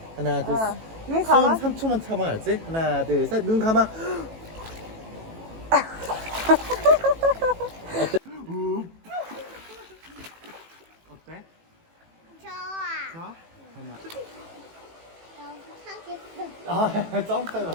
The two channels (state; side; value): late; left; 18 ms